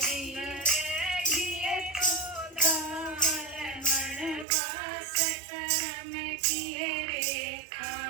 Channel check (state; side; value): drops out; left; at 4.5 s